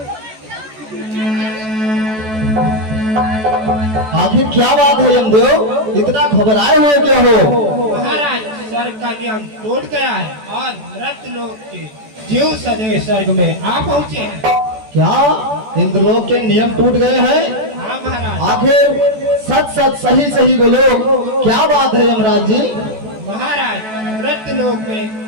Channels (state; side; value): late; left; 14 ms